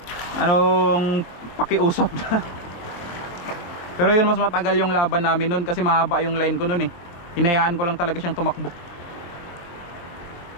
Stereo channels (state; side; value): late; right; 23 ms